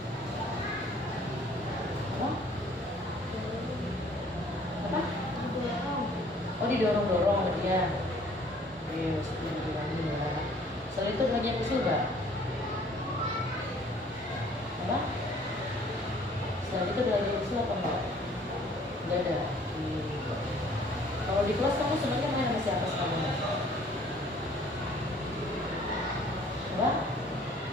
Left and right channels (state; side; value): normal; both; correlation 0.56